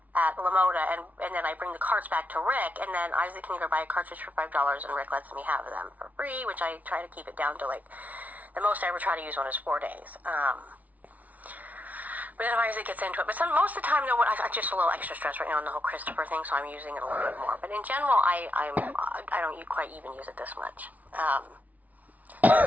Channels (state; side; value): late; left; 0.073 ms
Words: at Lamoda, and then I bring the carts back to Rick, and then Isaac can go buy a cartridge for $5, and Rick lets me have them for free, which I try to keep it down to, like, the most I ever try to use one is 4 days. But then Isaac gets into it. But most of the time, I'm just a little extra stressed right now on the whole Christopher thing, so I'm using it a little bit more. But in general, I don't quite even use it this much.